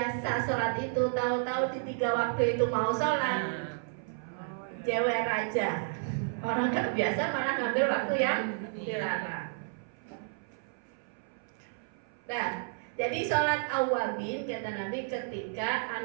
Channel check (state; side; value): silent; left; 57 dB below the other